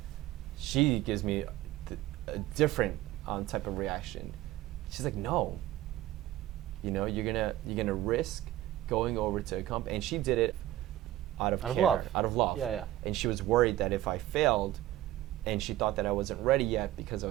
she gives me a different type of reaction. She's like, no. You're gonna risk going over to a company, and she did it out of care, out of love. Yeah. And she was worried that if I failed, and she thought that I wasn't ready yet because I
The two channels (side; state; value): left; quieter; 14.8 dB